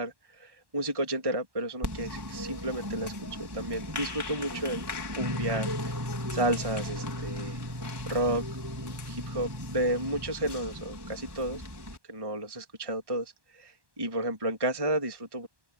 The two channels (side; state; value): left; late; 1.1 ms